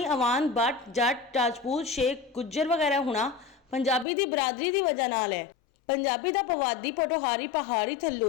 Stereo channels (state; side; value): drops out; right; at 4.0 s